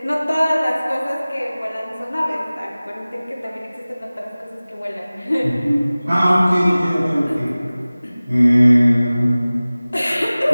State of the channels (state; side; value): inverted; both; correlation -0.98